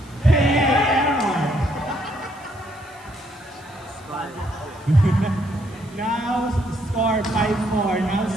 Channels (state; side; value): noise; right; hiss, 27 dB below the sound